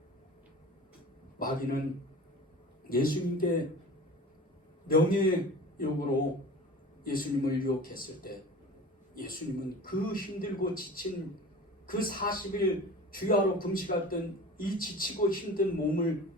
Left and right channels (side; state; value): both; normal; correlation 0.38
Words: 마귀는 예수님께 명예욕으로 예수님을 유혹했을 때 예수님은 그 힘들고 지친 그 40일 주야로 금식했던 이 지치고 힘든 몸을